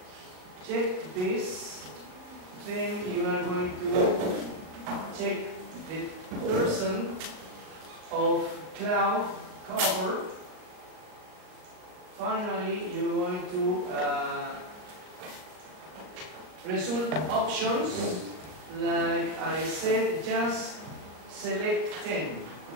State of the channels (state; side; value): late; left; 38 ms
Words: Check this. Then you are going to check the % of cloud cover. Finally, you're going to result options. Like I said, just select 10.